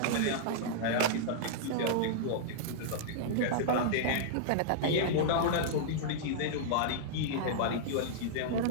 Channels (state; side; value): different; both; correlation -0.02